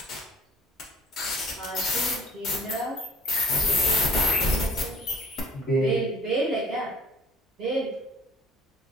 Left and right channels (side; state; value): both; normal; correlation 0.53